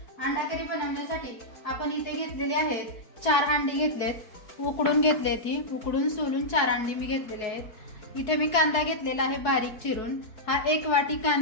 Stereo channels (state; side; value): late; right; 4.7 ms